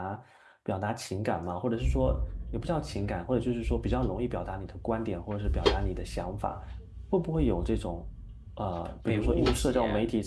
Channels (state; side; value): identical; both; correlation 1.00